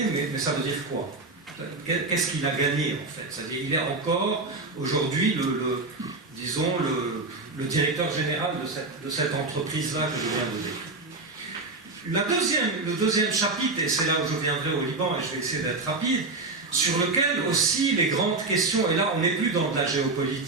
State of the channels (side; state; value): left; quieter; 3.4 dB